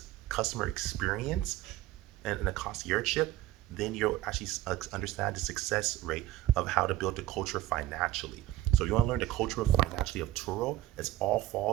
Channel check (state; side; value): quieter; left; 14.5 dB